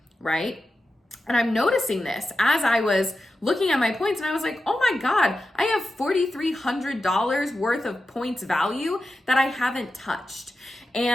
right? And I'm noticing this as I was looking at my points, and I was like, oh my God, I have $4,300 worth of points value that I haven't touched.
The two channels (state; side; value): normal; both; correlation 0.91